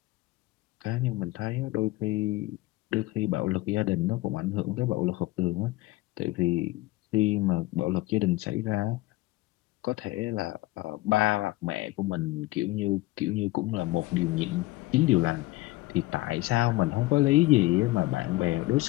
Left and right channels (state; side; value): quieter; right; 19.1 dB